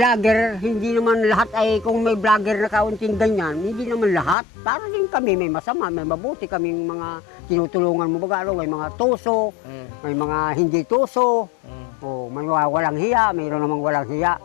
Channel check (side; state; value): right; drops out; at 4.4 s